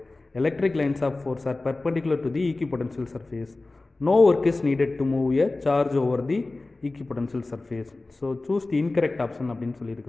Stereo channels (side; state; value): right; quieter; 3.2 dB